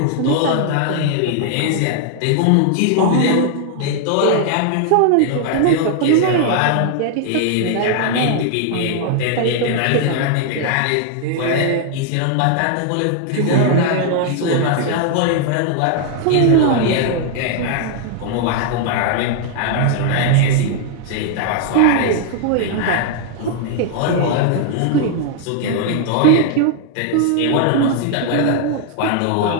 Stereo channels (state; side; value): different; both; correlation 0.00